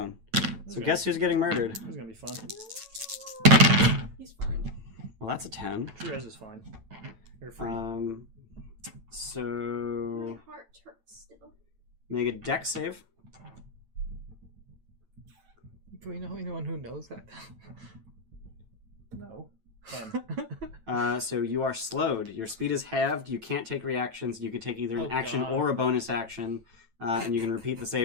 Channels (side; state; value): left; late; 9.0 ms